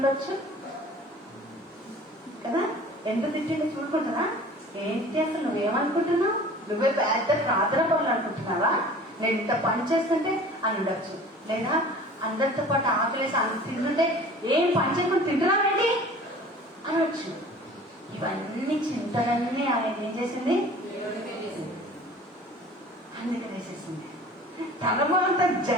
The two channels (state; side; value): normal; both; correlation 0.44